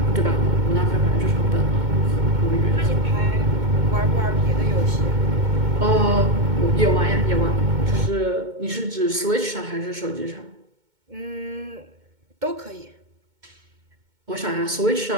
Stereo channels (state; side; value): late; left; 2.2 ms